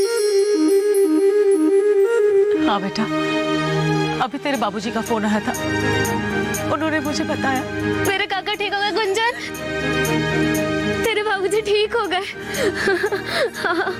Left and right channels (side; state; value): both; identical; correlation 1.00